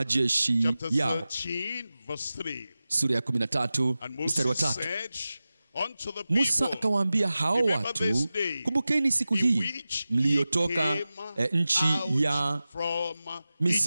yao. Sura ya 13 mstari wa 3. Musa akawaambia hao watu, kumbukeni siku hii mliotoka nchi ya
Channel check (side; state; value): both; inverted; correlation -0.95